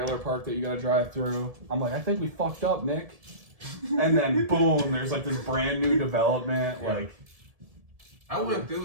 park that you gotta drive through. I'm like, I think we fucked up, Nick. And then boom, there's like this brand new development. Yeah. Like, I went through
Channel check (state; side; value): late; left; 1.7 ms